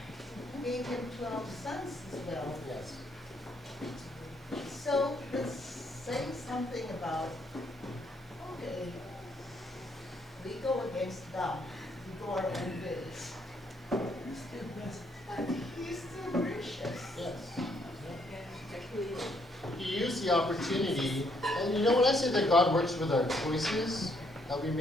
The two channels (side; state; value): both; normal; correlation 0.71